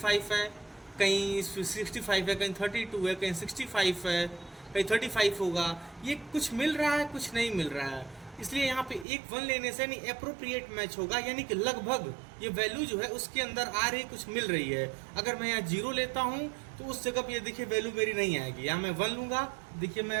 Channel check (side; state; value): left; drops out; at 9.1 s